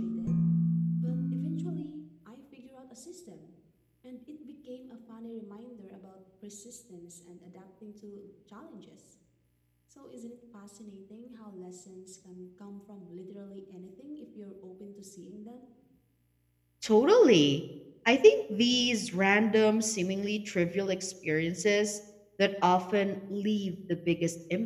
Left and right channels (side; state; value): both; identical; correlation 1.00